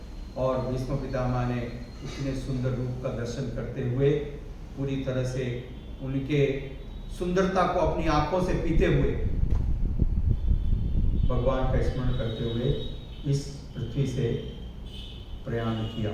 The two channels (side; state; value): both; identical; correlation 1.00